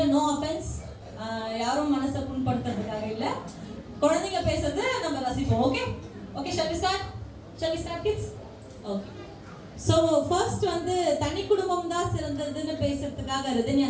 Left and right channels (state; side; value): identical; both; correlation 1.00